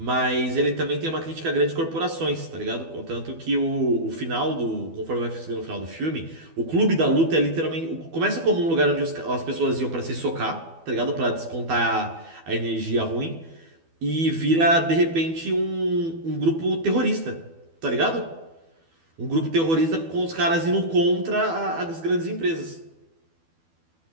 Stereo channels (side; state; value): left; late; 12 ms